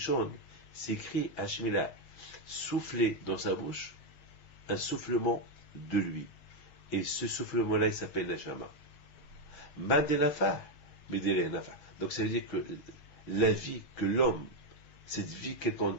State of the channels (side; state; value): right; late; 5.9 ms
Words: c'est écrit, Hachem, il a soufflé dans sa bouche un soufflement de lui. Et ce soufflement-là, il s'appelle Neshama. Madenafa, Medele. Donc ça veut dire que la vie que l'homme, cette vie